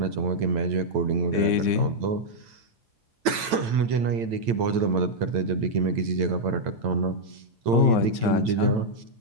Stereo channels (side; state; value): left; late; 8.9 ms